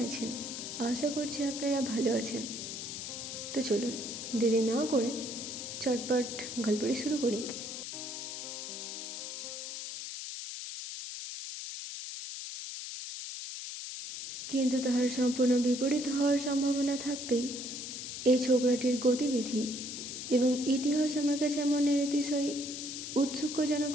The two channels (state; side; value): noise; left; hiss, 7 dB below the sound